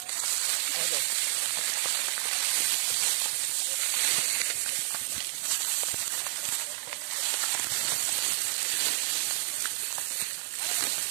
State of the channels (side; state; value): left; silent; digital silence